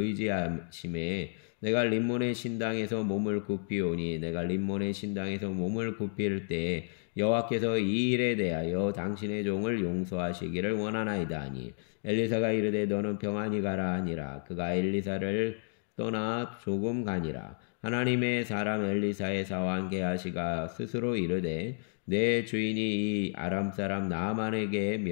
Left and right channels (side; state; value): right; silent; 55 dB below the other